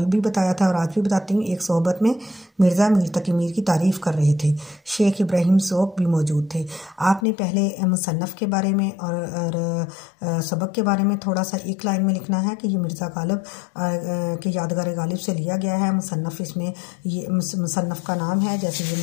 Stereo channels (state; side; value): drops out; right; at 7.2 s